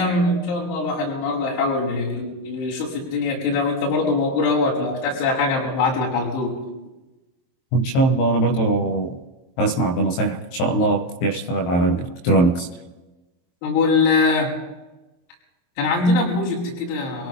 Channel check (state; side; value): late; right; 23 ms